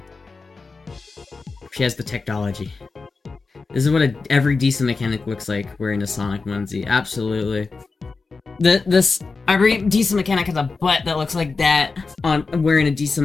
She has the technology. This is what every decent mechanic looks like wearing a Sonic onesie. Absolutely. Every decent mechanic has a butt that looks like that on wearing a decent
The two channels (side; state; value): right; quieter; 4.2 dB